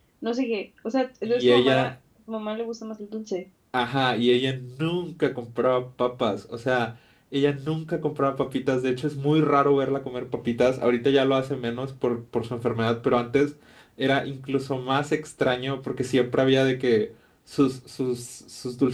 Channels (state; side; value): identical; both; correlation 1.00